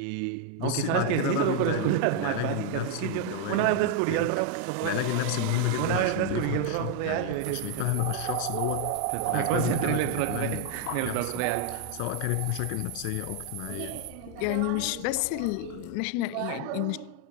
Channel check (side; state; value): both; different; correlation 0.00